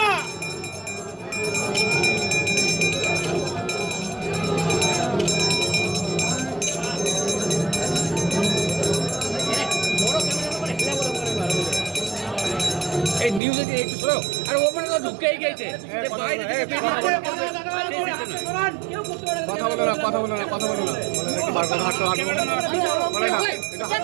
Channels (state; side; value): drops out; left; at 13.4 s